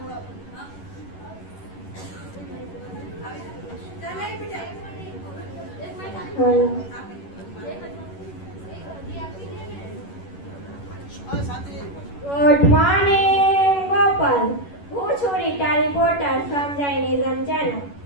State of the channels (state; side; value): late; right; 11 ms